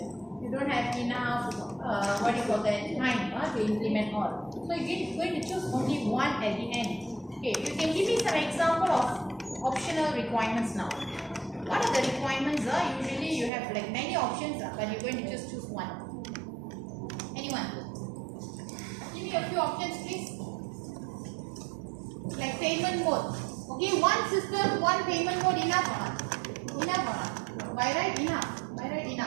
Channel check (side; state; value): left; drops out; at 13.5 s